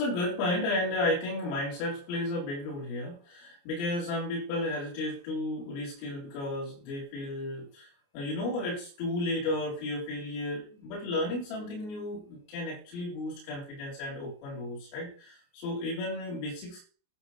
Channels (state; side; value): late; right; 29 ms